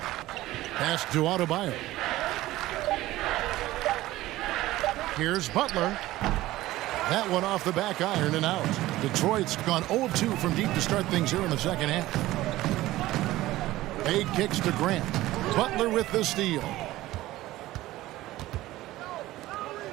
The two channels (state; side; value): quieter; left; 16.6 dB